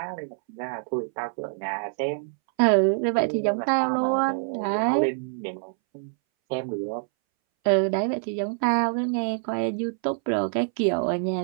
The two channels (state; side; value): silent; left; 61 dB below the other